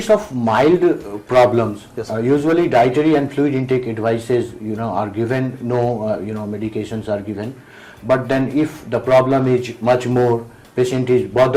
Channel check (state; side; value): identical; both; correlation 1.00